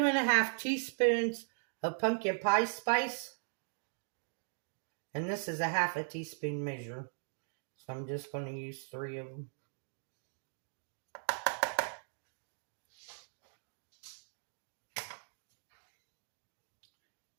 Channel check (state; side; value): silent; left; digital silence